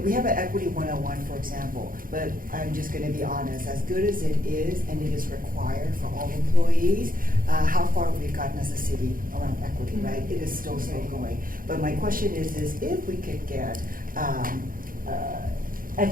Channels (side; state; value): left; late; 0.41 ms